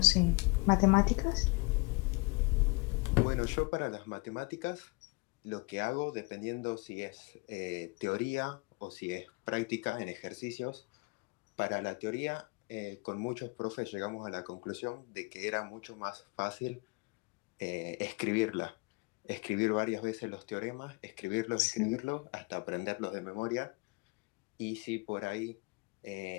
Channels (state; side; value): quieter; right; 27.9 dB